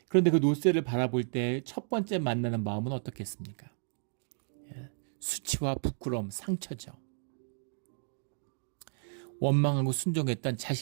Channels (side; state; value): left; silent; digital silence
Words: 그런데 그 놋새를 바라볼 때 첫 번째 만나는 마음은 어떻겠습니까? 수치와 부끄러움, 상처죠. 원망하고 순종했던